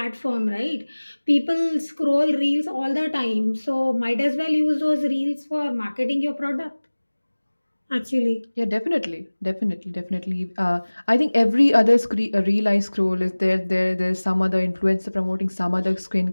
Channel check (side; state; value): both; inverted; correlation -1.00